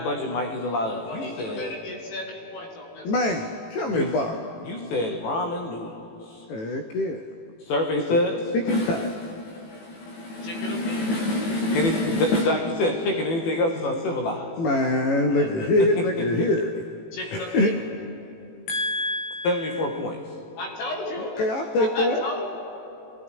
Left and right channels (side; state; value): right; late; 18 ms